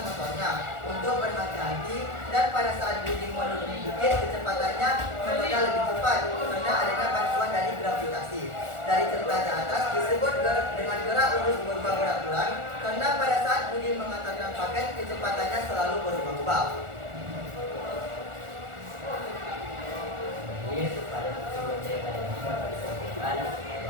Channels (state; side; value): late; left; 1.4 ms